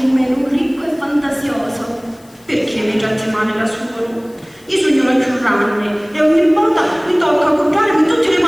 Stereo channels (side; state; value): left; noise; hiss, 28 dB below the sound